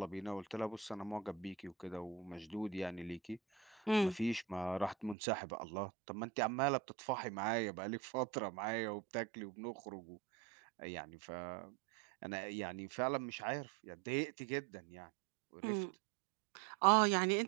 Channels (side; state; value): left; drops out; at 5.2 s